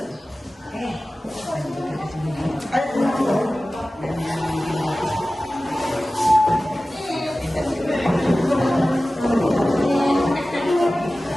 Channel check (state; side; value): normal; both; correlation 0.96